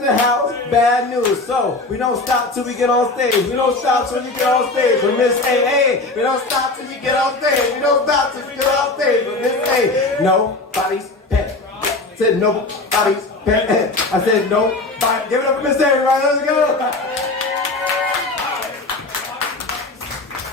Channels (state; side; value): quieter; right; 3.2 dB